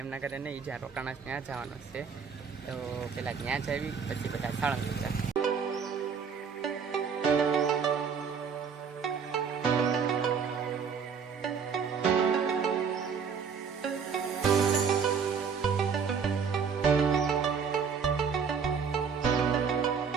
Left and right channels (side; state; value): left; quieter; 6.3 dB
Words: એમના ઘરે નહીં, જ્યાં રોકાણા ત્યાં જવાનું છે. તો પહેલાં ત્યાં જ આવી, પછી બધા સાળંગપુર જાય.